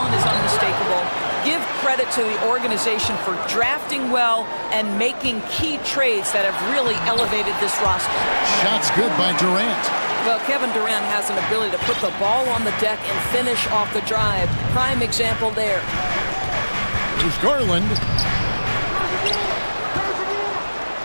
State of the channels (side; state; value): both; inverted; correlation -1.00